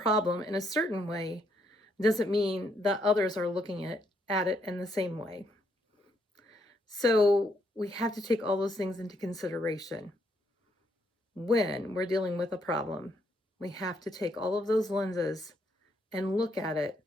in a certain way doesn't mean that others are looking at it in the same way. So we have to take all those things into consideration when we're dealing with a problem. We have to take all of those lenses and look at it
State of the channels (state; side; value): normal; both; correlation 0.74